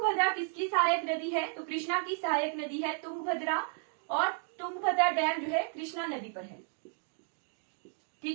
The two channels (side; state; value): left; silent; 56 dB below the other